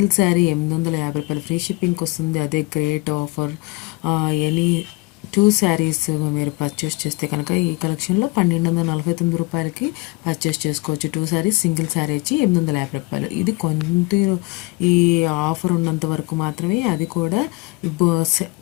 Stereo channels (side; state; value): right; quieter; 24.6 dB